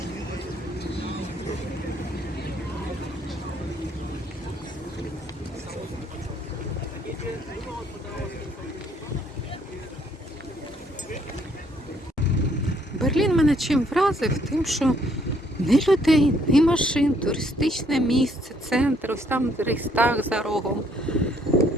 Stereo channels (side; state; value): both; normal; correlation 0.67